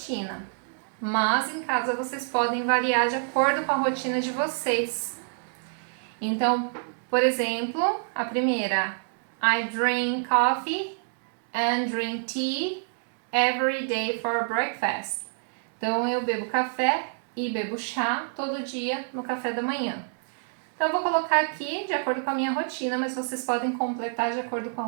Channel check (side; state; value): left; silent; digital silence